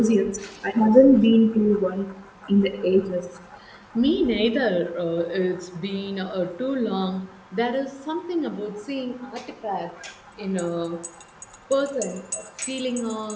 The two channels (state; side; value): identical; both; correlation 1.00